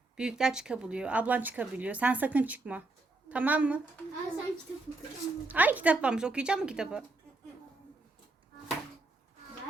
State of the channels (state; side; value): quieter; left; 3.1 dB